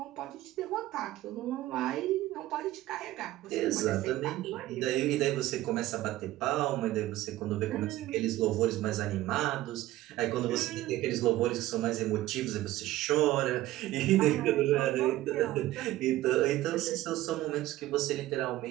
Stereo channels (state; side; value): quieter; left; 15.8 dB